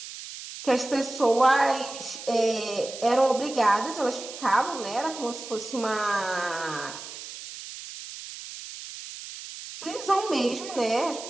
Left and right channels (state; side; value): noise; right; hiss, 12 dB below the sound